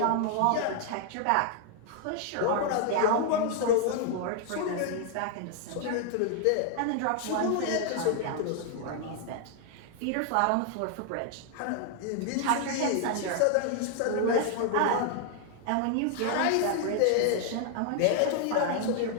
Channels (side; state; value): both; different; correlation 0.00